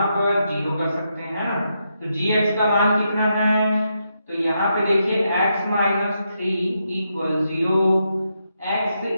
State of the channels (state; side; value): inverted; both; correlation -0.82